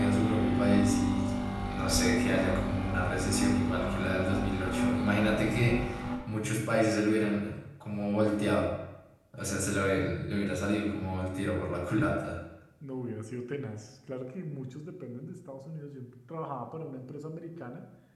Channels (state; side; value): identical; both; correlation 1.00